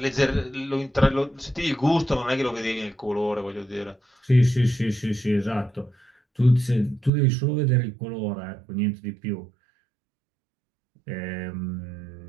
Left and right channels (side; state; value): left; drops out; at 7.1 s